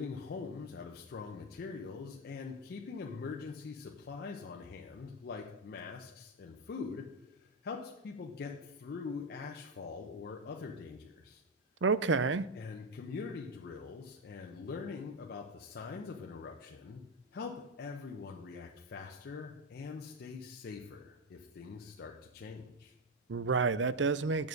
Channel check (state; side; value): normal; both; correlation 0.07